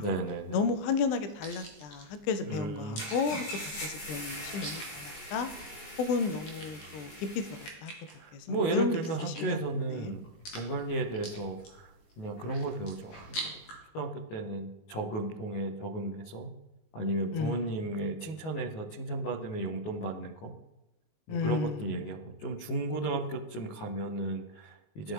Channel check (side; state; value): right; late; 19 ms